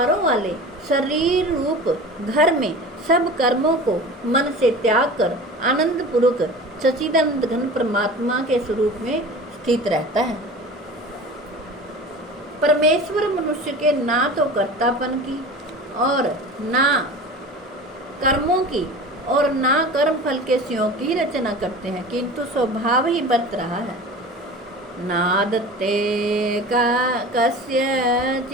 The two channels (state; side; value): normal; both; correlation 0.36